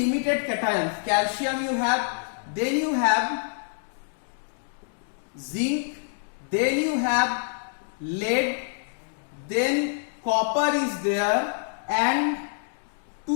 cations. Calcium you have, then you have zinc, then you have lead, then copper is there, and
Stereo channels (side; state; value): right; silent; digital silence